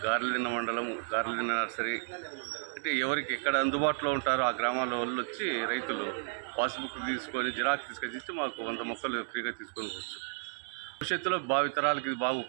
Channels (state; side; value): silent; left; 56 dB below the other